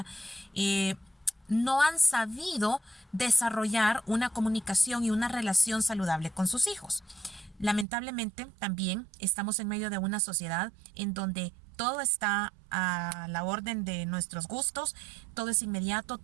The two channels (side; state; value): left; drops out; at 7.9 s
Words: no han sabido desarrollar una comunicación y una relación saludable con sus hijos. Lamentablemente, también estamos en medio de una sociedad en donde todo está a la orden de nuestros gustos, todo es inmediato,